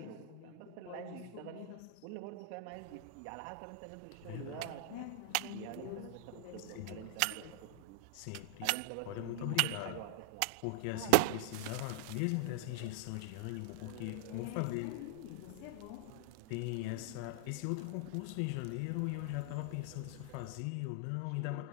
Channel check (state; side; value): different; both; correlation 0.00